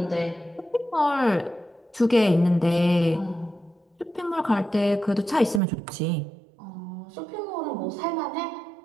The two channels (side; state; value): left; drops out; at 5.6 s